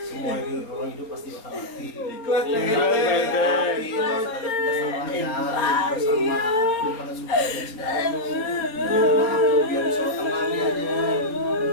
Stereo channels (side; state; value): right; late; 4.4 ms